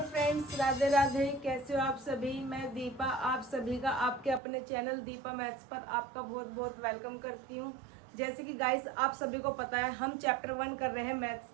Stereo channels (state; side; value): drops out; left; at 4.4 s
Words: friends, Radhe Radhe. कैसे हो आप सभी। मैं दीपा आप सभी का आपके अपने चैनल दीपा मैथ्स पर आपका बहुत बहुत वेलकम करती हूँ। जैसे कि गाइस आप सभी को पता है हम चैप्टर 1 कर रहे हैं मैथ्स